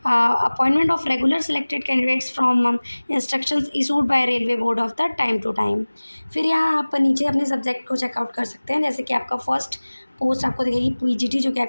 Appointment of regular selected candidates from instructions issued by railway board of the time to time. फिर यहाँ आप नीचे अपने सब्जेक्ट को चेकआउट कर सकते हैं, जैसे कि आपका फर्स्ट पोस्ट आपको दिखेगी पीजीटी, जो कि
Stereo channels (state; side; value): inverted; both; correlation -1.00